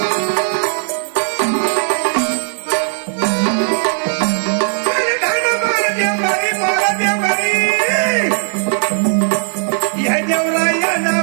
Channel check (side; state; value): left; silent; 66 dB below the other